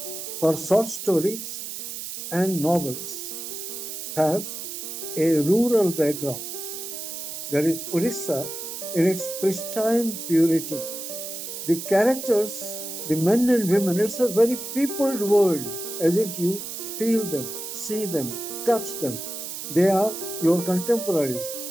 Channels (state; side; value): noise; right; hiss, 7 dB below the sound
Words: Her short stories and novels have a rural background. There is Odisha in its pristine purity. The characters, the men and women, it's a very peopled world, as if you feel them, see them, touch them. They are your contemporaries.